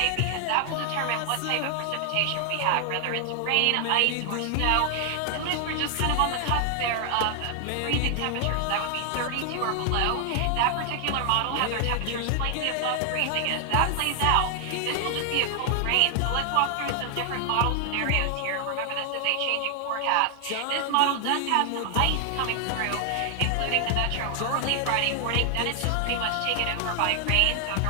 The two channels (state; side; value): different; both; correlation 0.00